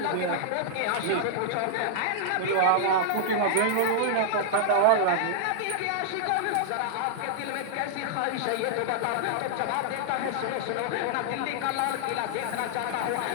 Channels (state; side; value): different; both; correlation -0.01